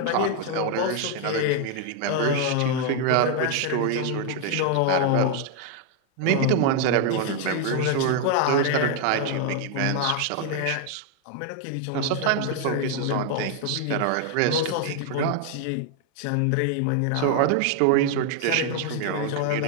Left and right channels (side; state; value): both; different; correlation 0.01